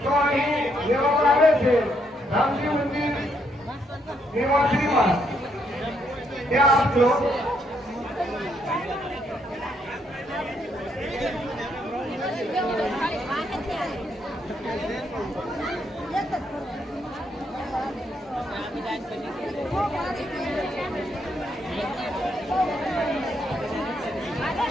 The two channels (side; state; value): both; normal; correlation 0.74